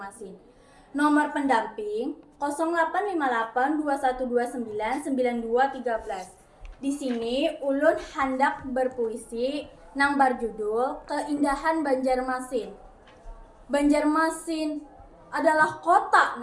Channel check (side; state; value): both; identical; correlation 1.00